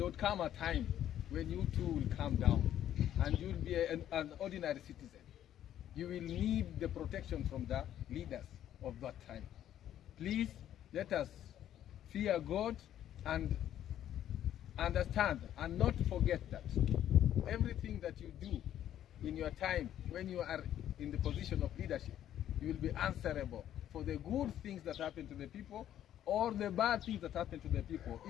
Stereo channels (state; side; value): quieter; right; 11.3 dB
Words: would come a time when you too will come down and you will be an ordinary citizen. You will need the protection from the leaders of that time. Please let us fear God and understand and not forget that everything that you do in your time when you are in the position of leadership you will be answerable for the good things that happen to the people or the bad things that happen to the people,